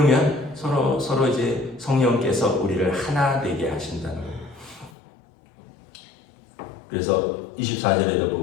서로 이제 성령께서 우리를 하나 되게 하신다는 거예요. 그래서 24절에도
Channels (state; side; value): drops out; right; at 4.9 s